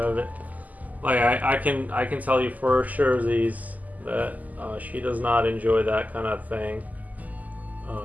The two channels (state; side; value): late; left; 0.079 ms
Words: it. Like I can tell you for sure, Z's, that she does not enjoy that kind of thing.